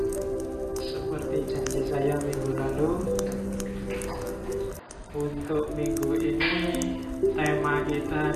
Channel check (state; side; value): identical; both; correlation 1.00